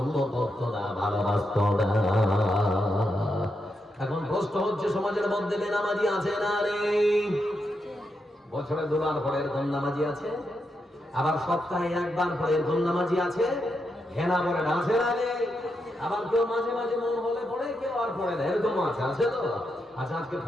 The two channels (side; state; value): both; normal; correlation 0.84